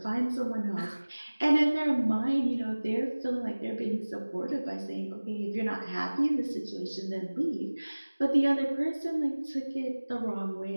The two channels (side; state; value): both; inverted; correlation -1.00